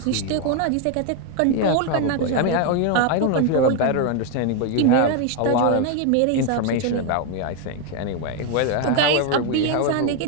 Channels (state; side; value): different; both; correlation 0.01